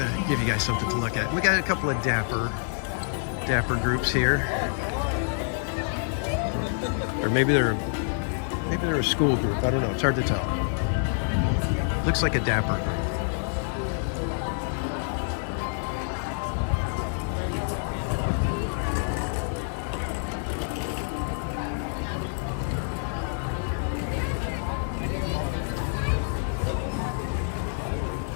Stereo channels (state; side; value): silent; right; digital silence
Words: you guys something to look at. We got a couple of dapper groups here. Or maybe they're a school group. I don't know. It's hard to tell. Looks like a dapper group.